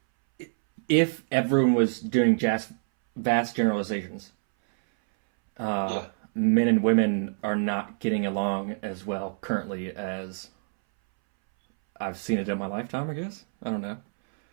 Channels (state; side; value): silent; left; 61 dB below the other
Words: if everyone was doing vast generalizations, men and women are not getting along as well currently as I've seen it in my lifetime, I guess. I don't know.